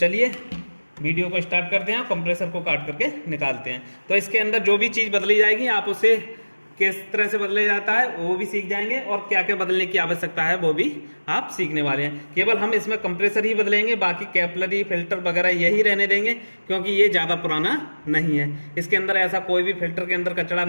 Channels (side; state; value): both; inverted; correlation -1.00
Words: वीडियो को स्टार्ट करते हैं, कंप्रेसर को काट करके निकालते हैं। तो इसके अंदर जो भी चीज़ बदली जाएगी, आप उसे किस तरह से बदला जाता है वो भी सीख जाएंगे, और क्या क्या बदलने की आवश्यकता है वो भी आप सीखने वाले हैं। केवल हम इसमें कंप्रेसर ही बदलेंगे, बाकी कैपलरी फिल्टर वगैरह यही रहने देंगे, क्योंकि ये ज़्यादा पुराना नहीं है। इसके अंदर ऐसा कोई भी फिल्टर के अंदर कचरा